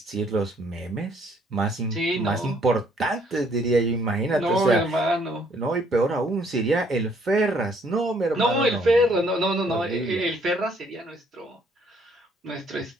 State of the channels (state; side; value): normal; both; correlation 0.65